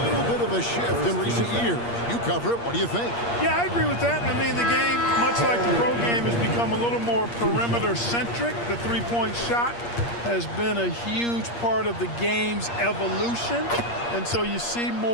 bit of a shift in recent years. You cover it. What do you think? Yeah, I agree with that. I mean, the game, much like the pro game, has become a little more perimeter-centric. The three-point shot has been a huge part of the game's evolution. And so you see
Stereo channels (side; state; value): right; late; 8.5 ms